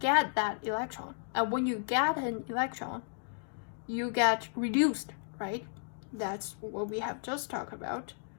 that electron. And when you get an electron, you get reduced, right? That's what we have just talked about.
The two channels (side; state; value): right; silent; digital silence